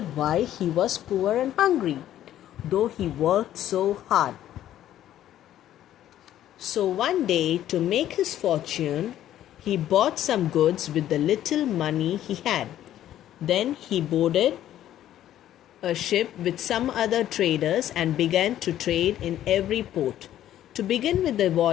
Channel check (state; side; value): quieter; right; 12.2 dB